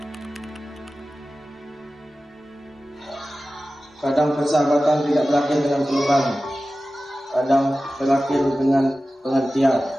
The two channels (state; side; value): normal; both; correlation 0.95